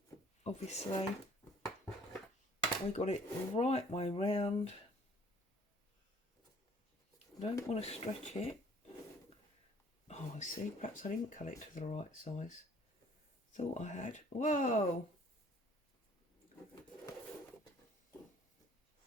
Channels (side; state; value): both; normal; correlation 0.56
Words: obviously we got it the right way round. Don't want to stretch it. Oh, I see, perhaps I didn't cut it to the right size. Thought I had. Whoa!